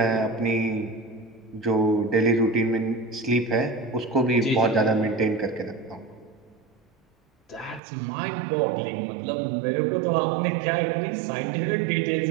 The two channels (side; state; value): left; drops out; at 7.8 s